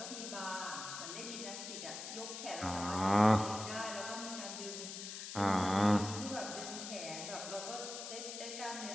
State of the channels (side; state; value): left; noise; hiss, 7 dB below the sound